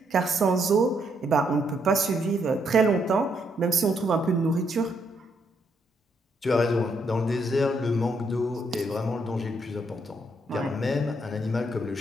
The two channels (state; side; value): normal; both; correlation 0.74